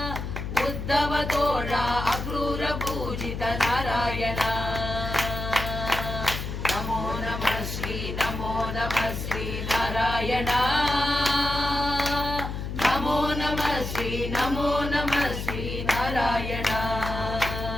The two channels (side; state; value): left; noise; hum, 5 dB below the sound